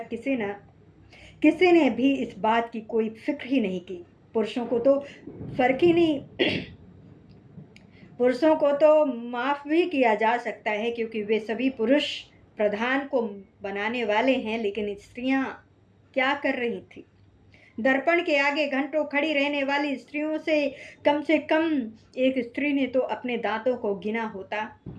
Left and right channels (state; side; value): identical; both; correlation 1.00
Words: किसी ने भी इस बात की कोई फिक्र ही नहीं की। पुरुषों को तो फर्क ही नहीं पुरुषों को तो माफ भी किया जा सकता है, क्योंकि वे सभी पुरुष प्रधान को बनाने वाले हैं। लेकिन स्त्रियां क्या कर रही थी? दर्पण के आगे घंटों खड़ी रहने वाली स्त्रियों से कम एक स्त्री ने तो अपने दांतों को गिना होता,